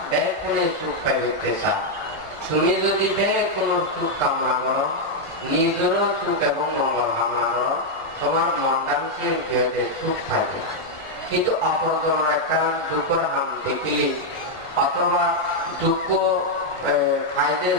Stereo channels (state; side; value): late; left; 1.5 ms